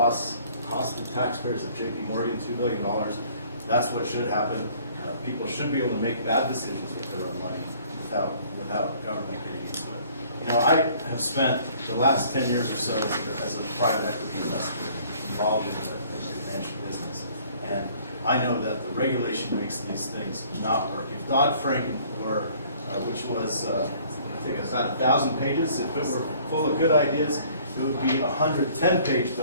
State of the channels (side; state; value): both; inverted; correlation -0.56